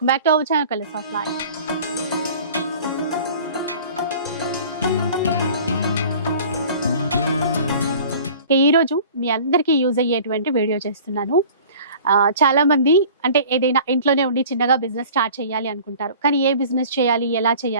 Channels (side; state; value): both; inverted; correlation -0.45